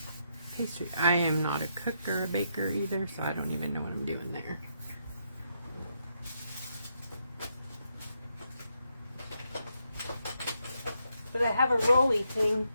pastry. I am not a cook or a baker either, so I don't even know what I'm doing there. But I have a rolly thing.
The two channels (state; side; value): inverted; both; correlation -0.79